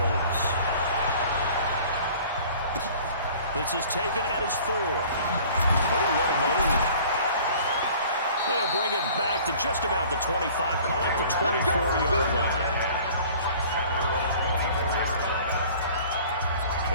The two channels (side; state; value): both; inverted; correlation -0.48